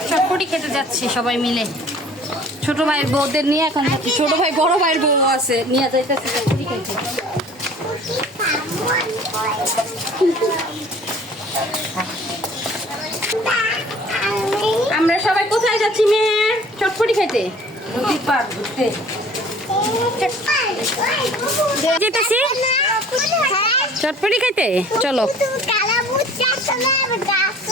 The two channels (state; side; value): normal; both; correlation 0.50